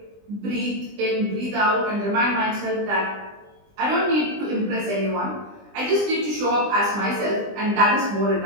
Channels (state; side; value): late; left; 20 ms